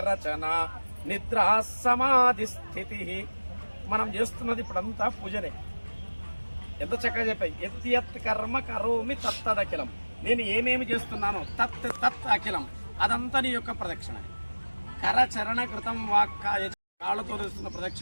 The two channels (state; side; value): inverted; both; correlation -1.00